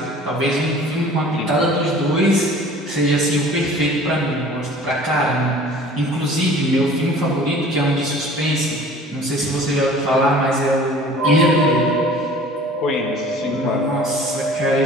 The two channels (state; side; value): normal; both; correlation 0.47